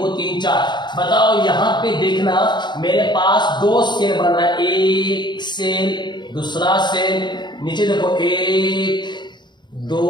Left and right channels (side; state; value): right; late; 0.22 ms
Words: 3 4। बताओ यहाँ पे देखना मेरे पास 2 सेल बन रहा है। एक सेल, दूसरा सेल, नीचे देखो 1 2